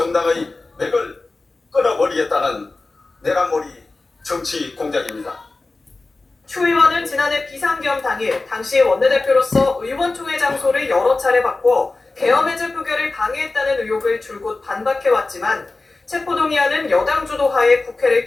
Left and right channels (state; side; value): quieter; right; 3.4 dB